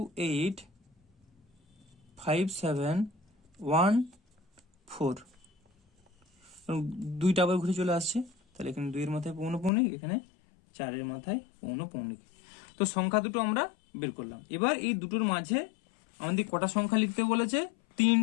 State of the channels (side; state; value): right; drops out; at 9.7 s